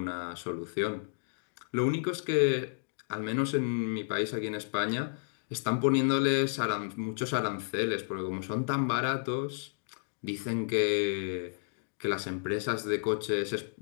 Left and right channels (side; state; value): right; silent; digital silence